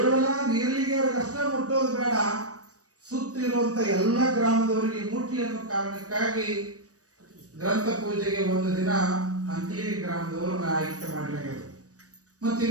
ನೀರಲಿಗೆ ಅಷ್ಟೇ ಮುಟ್ಟೋದು ಬೇಡ, ಸುತ್ತಿರುವಂತ ಎಲ್ಲ ಗ್ರಾಮದವರಿಗೆ ಮುಟ್ಲಿ ಅನ್ನೋ ಕಾರಣಕ್ಕಾಗಿ ಗ್ರಂಥ ಪೂಜೆಗೆ ಒಂದು ದಿನ ಅಂಕಲಿ ಗ್ರಾಮದವರನ್ನ ಆಯ್ಕೆ ಮಾಡಲಾಗಿದೆ. ಮತ್ತೆ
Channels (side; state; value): left; late; 0.66 ms